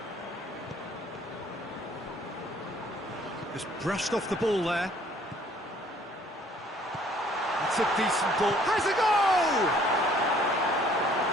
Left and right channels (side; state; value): both; normal; correlation 0.59